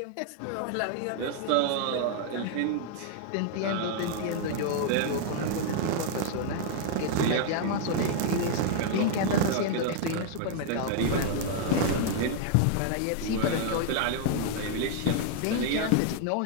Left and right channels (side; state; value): both; different; correlation 0.00